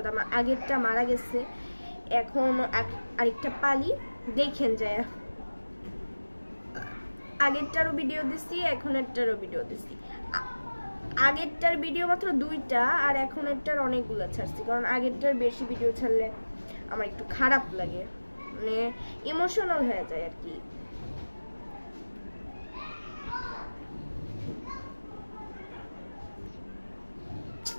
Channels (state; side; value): inverted; both; correlation -1.00